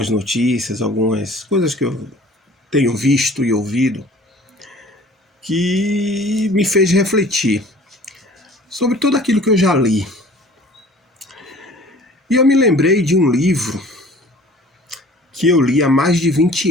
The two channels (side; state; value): both; normal; correlation 0.49